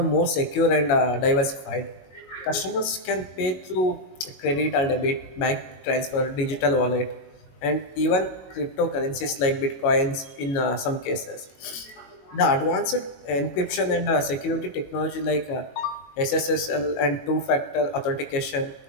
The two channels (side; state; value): right; late; 22 ms